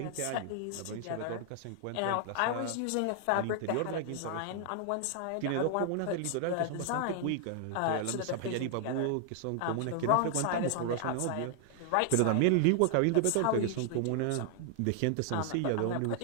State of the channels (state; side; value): different; both; correlation 0.00